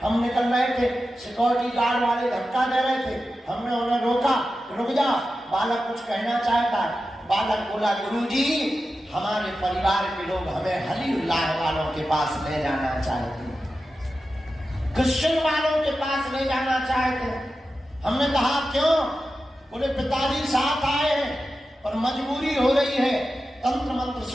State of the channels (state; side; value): normal; both; correlation 0.92